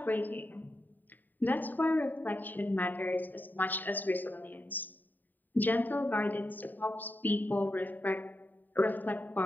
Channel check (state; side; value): late; right; 0.089 ms